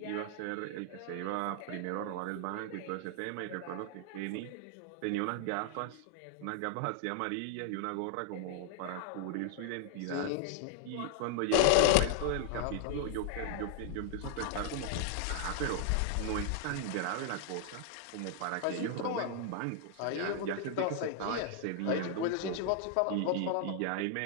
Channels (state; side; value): different; both; correlation 0.00